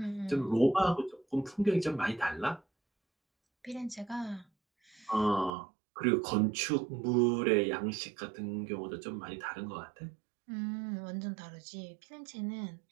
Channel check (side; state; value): left; drops out; at 5.5 s